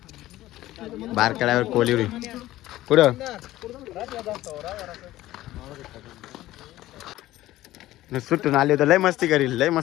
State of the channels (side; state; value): right; quieter; 15.6 dB